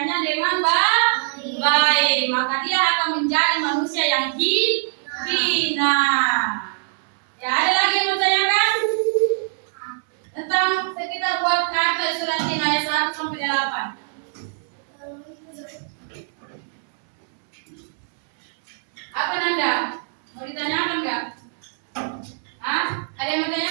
dengan baik. Maka dia akan menjadi manusia yang hina. Ya, ada lagi yang bertanyakan? Tentang sekitar buat kata surat ayat 1 sampai 8. Apa Nanda? Mau ditanyakan enggak? Hah? Ada yang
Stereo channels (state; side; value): silent; left; 64 dB below the other